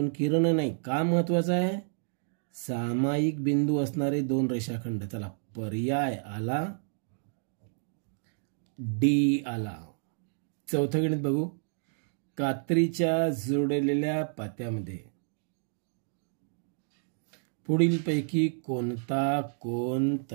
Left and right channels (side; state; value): left; silent; digital silence